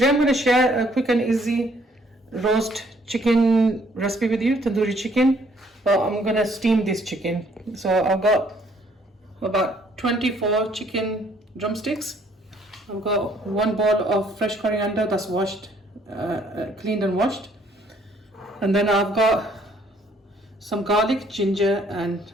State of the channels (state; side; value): normal; both; correlation 0.64